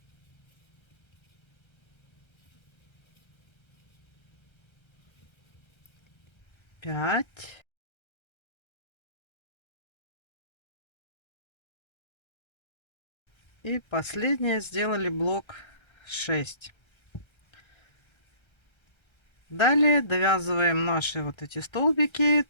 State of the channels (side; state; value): right; late; 1.3 ms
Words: 5. И последнее сделали блок 6. Далее довязываем наши вот эти столбики